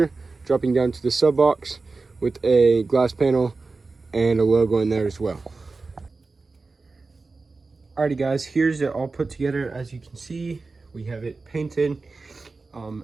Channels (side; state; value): left; quieter; 3.9 dB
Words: dropping down to the sub box with a glass panel and a logo in there as well. Alrighty guys, here's it all put together. As you can see, we have it painted.